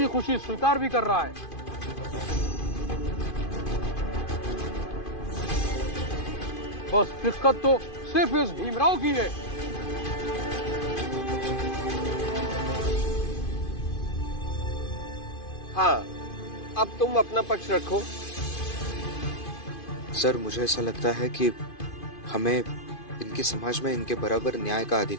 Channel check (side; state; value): right; late; 2.5 ms